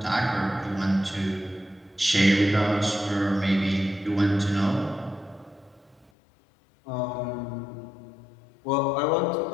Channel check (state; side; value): drops out; right; at 6.1 s